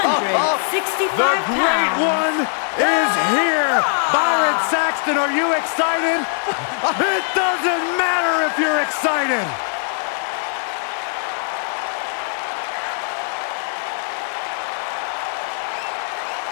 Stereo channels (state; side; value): silent; right; 62 dB below the other